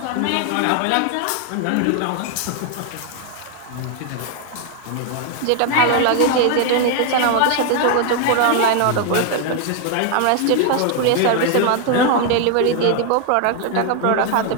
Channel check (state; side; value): different; both; correlation 0.01